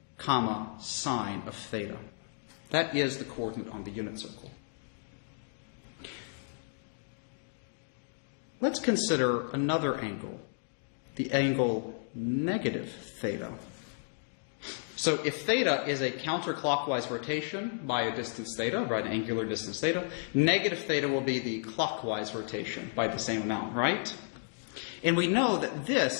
comma, sine of theta. That is the coordinate on the unit circle. Let's consider another angle, the angle negative theta. So if theta is a counterclockwise rotation by a distance theta, by an angular distance theta, negative theta will be the clockwise rotation by the same amount, right? And we know that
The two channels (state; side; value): silent; right; digital silence